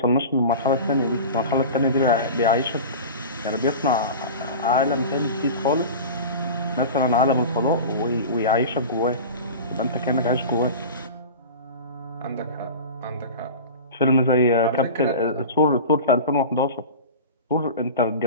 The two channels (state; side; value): inverted; both; correlation -0.32